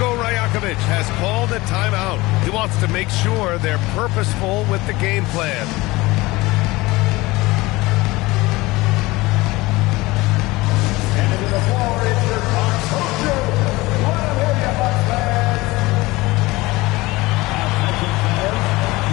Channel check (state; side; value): quieter; right; 20.9 dB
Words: Rajakovic has called a timeout. He wants to make sure they're purposeful with the game plan.